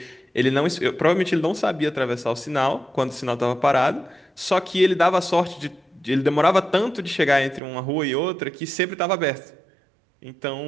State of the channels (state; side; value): drops out; left; at 7.6 s